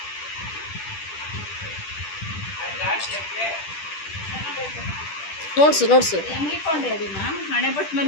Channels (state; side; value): late; right; 10 ms